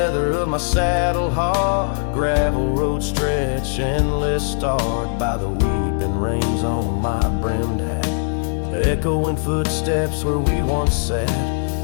of my saddle hard, gravel road stretch endless starred by the weeping rains on my brimmed hat, echoing footsteps where we once sat.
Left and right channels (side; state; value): right; silent; digital silence